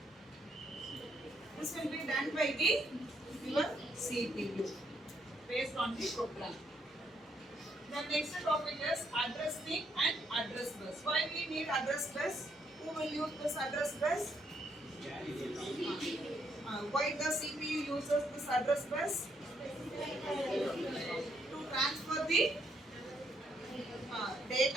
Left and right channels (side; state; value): both; normal; correlation 0.74